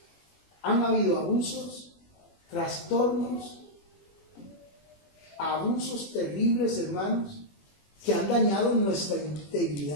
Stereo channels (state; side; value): late; right; 21 ms